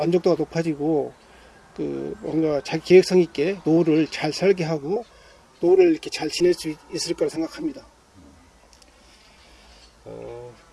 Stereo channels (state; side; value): identical; both; correlation 1.00